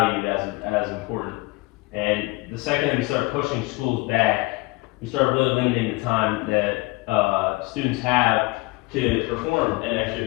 as important. And the second that we start pushing schools back, we start really limiting the time that students have to perform in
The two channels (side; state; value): right; quieter; 23.3 dB